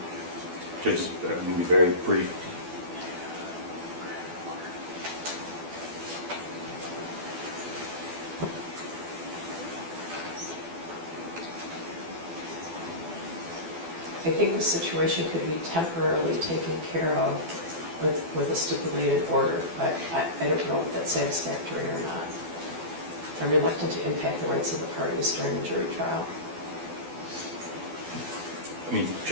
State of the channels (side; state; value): left; late; 12 ms